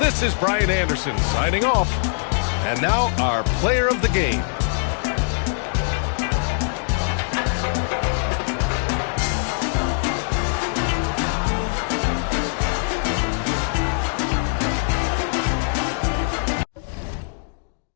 is Brian Anderson signing off. And now our player of the game.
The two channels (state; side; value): silent; right; digital silence